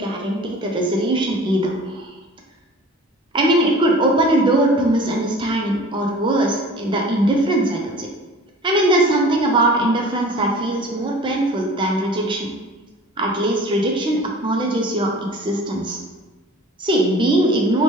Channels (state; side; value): normal; both; correlation 0.43